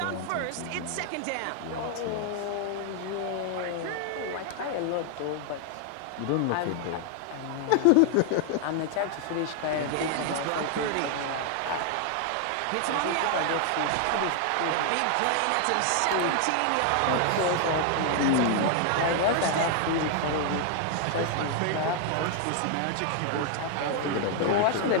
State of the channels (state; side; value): different; both; correlation 0.00